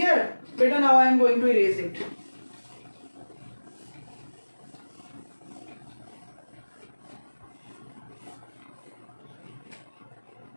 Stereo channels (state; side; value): inverted; both; correlation -1.00